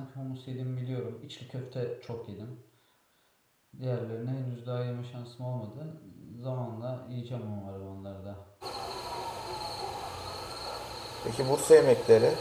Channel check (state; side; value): identical; both; correlation 1.00